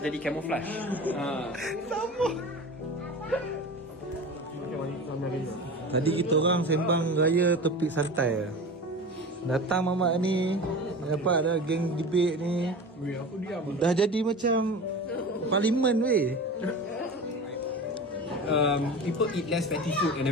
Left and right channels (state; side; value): normal; both; correlation 0.33